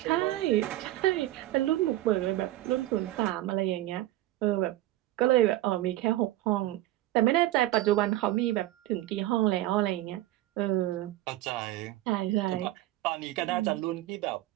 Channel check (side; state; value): left; quieter; 15.5 dB